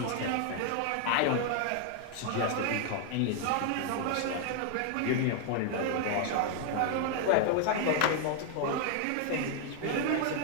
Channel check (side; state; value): both; different; correlation 0.00